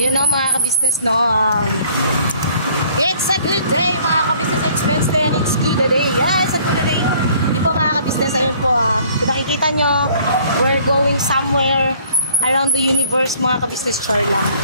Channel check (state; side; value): inverted; both; correlation -0.56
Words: na mga kabisnes, no? It's a good day, mga kabisnes. It's Wednesday and it's good day. Yes, a good day. Di po mga kabisnes, ayun po. Kung nakikita nyo, we're going somewhere around the universe, mga kabisnes. Sure lang.